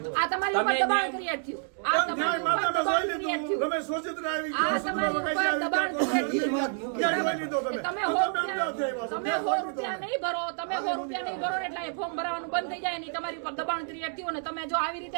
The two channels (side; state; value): left; silent; 59 dB below the other